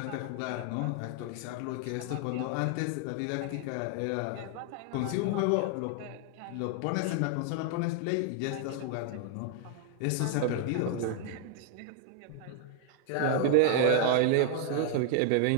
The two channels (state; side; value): different; both; correlation 0.00